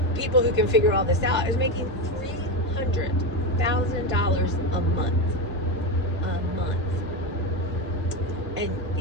people who can figure all this out, is making $300,000 a month. And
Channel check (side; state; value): both; normal; correlation 0.14